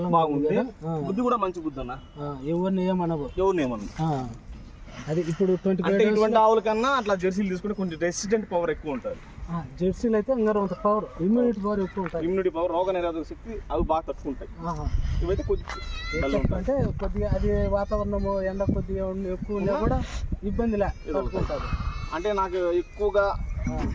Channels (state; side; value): identical; both; correlation 1.00